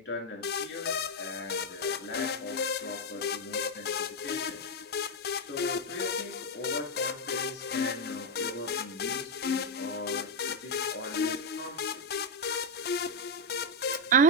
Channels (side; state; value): both; normal; correlation 0.03